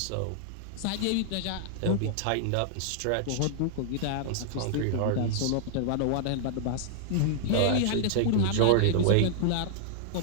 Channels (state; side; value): different; both; correlation -0.01